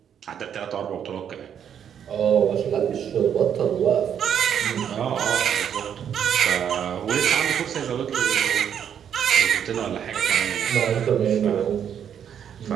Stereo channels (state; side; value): quieter; left; 8.7 dB